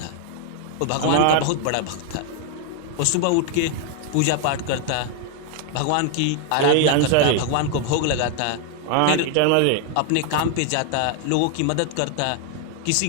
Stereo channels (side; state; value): both; different; correlation 0.00